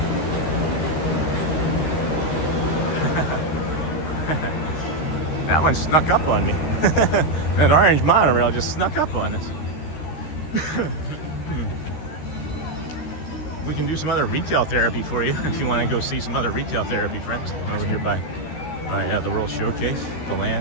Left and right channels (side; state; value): right; late; 13 ms